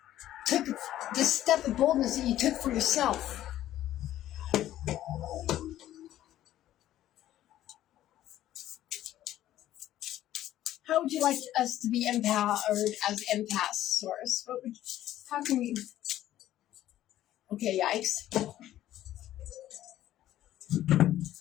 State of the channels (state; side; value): quieter; right; 13.1 dB